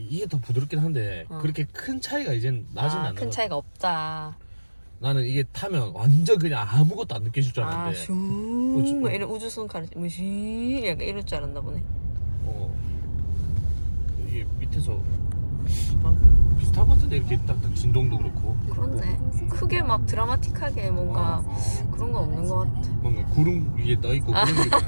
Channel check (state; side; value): inverted; both; correlation -1.00